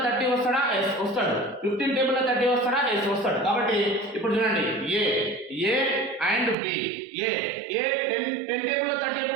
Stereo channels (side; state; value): left; drops out; at 6.6 s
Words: 30 వస్తాడా? ఎస్ వస్తాడు. 15 టేబుల్ లో 30 వస్తాడా? ఎస్ వస్తాడు. కాబట్టి ఇప్పుడు చూడండి, A and B. A 10 table లో 30